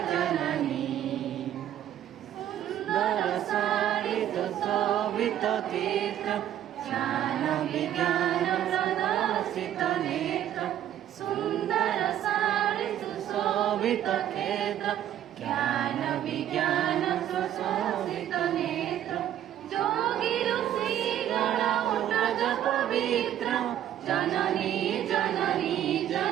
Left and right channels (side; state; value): left; quieter; 11.2 dB